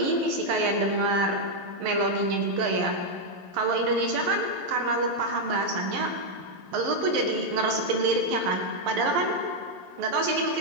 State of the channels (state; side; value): late; left; 11 ms